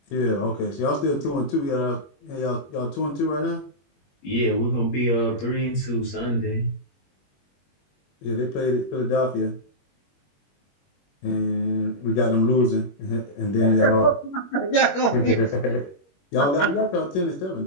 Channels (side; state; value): right; late; 21 ms